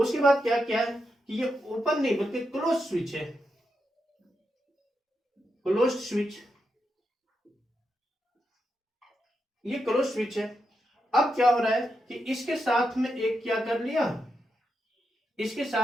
बाद क्या क्या है कि ये ओपन नहीं बल्कि क्लोज स्विच है, क्लोज स्विच, ये क्लोज स्विच है। अब क्या हो रहा है कि इसके साथ में एक क्या कर लिया, इसके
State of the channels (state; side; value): normal; both; correlation 0.85